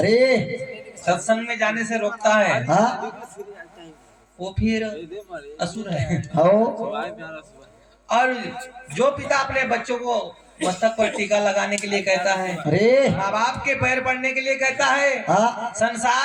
सत्संग में जाने से रोकता है, हाँ वो फिर असुर है। हो और जो पिता अपने बच्चों को मस्तक पर टीका लगाने के लिए कहता है, अरे माँ बाप के पैर पड़ने के लिए कहता है, हाँ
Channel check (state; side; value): identical; both; correlation 1.00